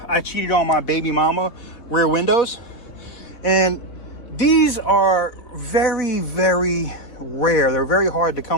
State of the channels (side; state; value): right; late; 4.2 ms